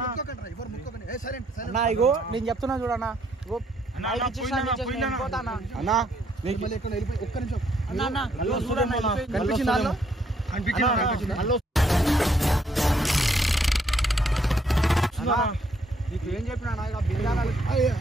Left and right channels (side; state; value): both; normal; correlation 0.70